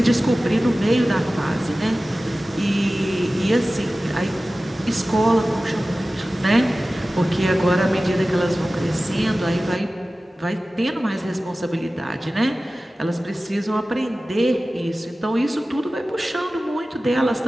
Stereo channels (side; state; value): both; normal; correlation 0.96